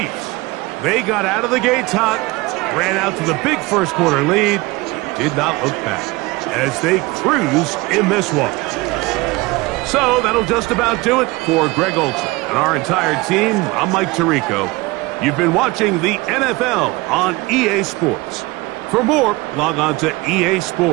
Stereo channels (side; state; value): left; quieter; 22.4 dB